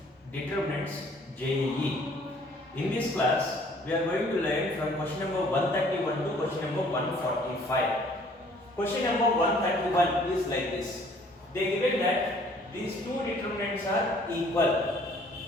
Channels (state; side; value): normal; both; correlation 0.58